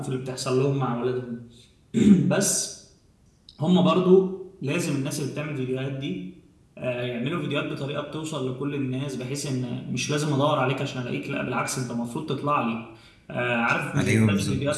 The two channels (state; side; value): identical; both; correlation 1.00